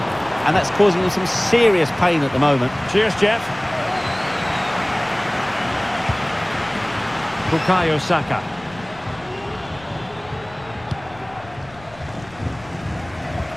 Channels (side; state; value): left; noise; rumble, 22 dB below the sound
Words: and that's causing him some serious pain at the moment. Cheers, Jeff. Bukayo Saka.